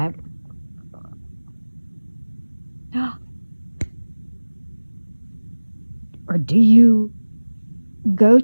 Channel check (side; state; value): both; inverted; correlation -1.00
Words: or do you go